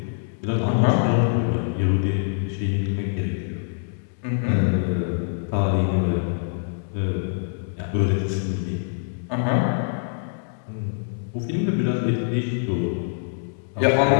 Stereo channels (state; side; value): silent; right; digital silence